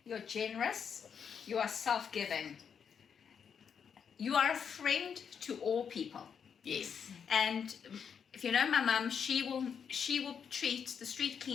you're generous, you are self-giving. You are a friend to all people. Yes. And if you know my mum, she will treat the street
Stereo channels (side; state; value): right; quieter; 7.1 dB